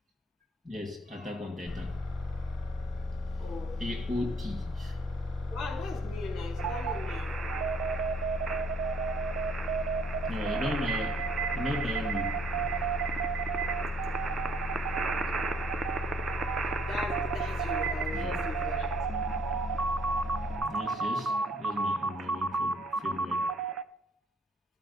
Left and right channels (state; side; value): normal; both; correlation 0.63